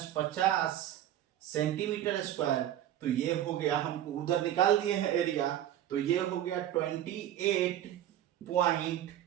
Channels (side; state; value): left; quieter; 11.8 dB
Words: सेंटीमीटर स्क्वायर, तो ये हो गया, हमको उधर निकाल दिए हैं एरिया, तो ये हो गया